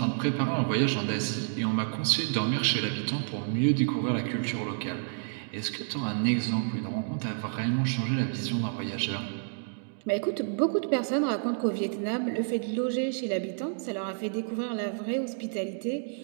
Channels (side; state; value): left; silent; digital silence